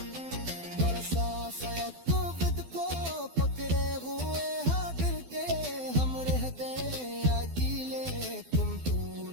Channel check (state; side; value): late; left; 12 ms